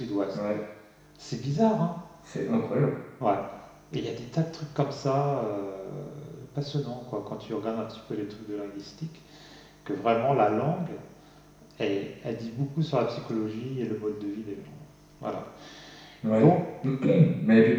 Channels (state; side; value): identical; both; correlation 1.00